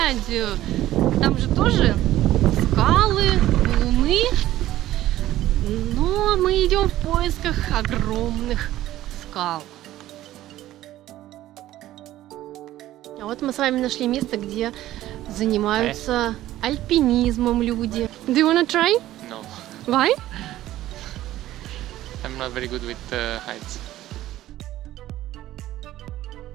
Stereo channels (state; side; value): quieter; left; 14.5 dB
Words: Там же тоже скалы, валуны. Но мы идем в поисках огромных скал. А вот мы с вами нашли место, где занимаются альпинизмом люди. Do you wanna try? No, Why? I'm not very good with heights.